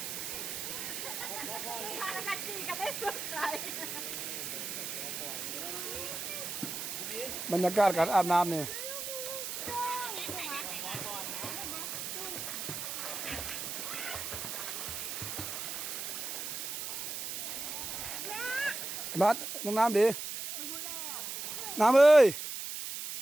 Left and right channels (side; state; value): right; noise; hiss, 5 dB below the sound